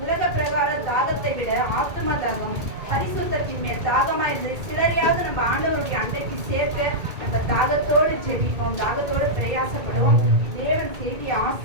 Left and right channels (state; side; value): late; left; 2.2 ms